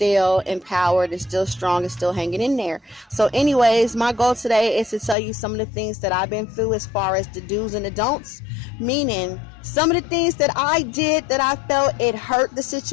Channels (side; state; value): right; drops out; at 5.2 s